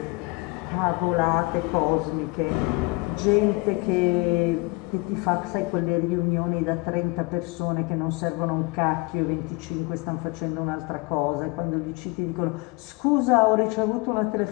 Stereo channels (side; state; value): right; quieter; 26.3 dB